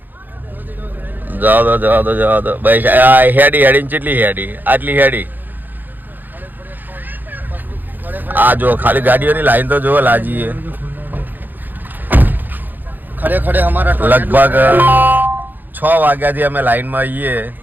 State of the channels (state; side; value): late; left; 0.087 ms